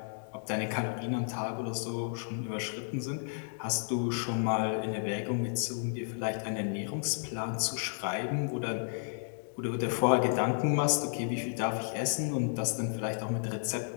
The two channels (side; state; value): right; silent; digital silence